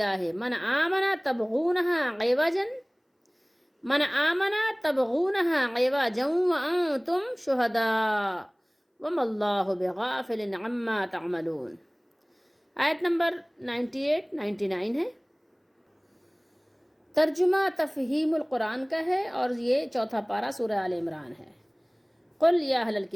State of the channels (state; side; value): identical; both; correlation 1.00